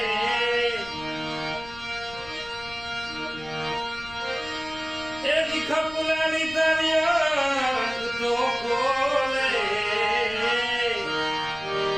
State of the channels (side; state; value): left; noise; rumble, 18 dB below the sound